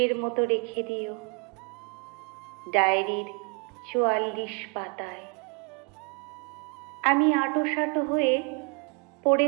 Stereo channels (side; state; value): left; quieter; 35.8 dB